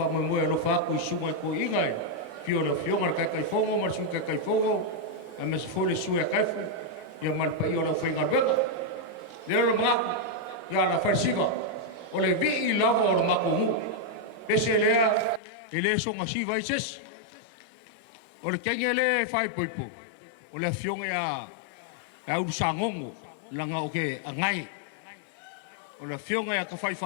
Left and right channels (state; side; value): drops out; right; at 15.4 s